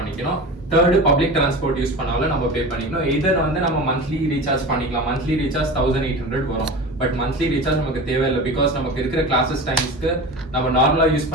தேர்டு பப்ளிக் டிரான்ஸ்போர்ட் யூஸ் பண்ணாலும் நம்ம பே பண்ணிக்கணும். இதர் வந்து நம்ம மந்த்லி ரீசார்ஜ் பண்ணிக்கலாம். மந்த்லி ரீசார்ஜ் 1800 வரும். பட் மந்த்லி ரீசார்ஜ் நமக்கு தேவையில்லை. பிகாஸ் நமக்கு இருக்கிற கிளாஸஸ் டைம்ஸ்க்கு நம்ம நார்மலா யூஸ்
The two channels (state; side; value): normal; both; correlation 0.31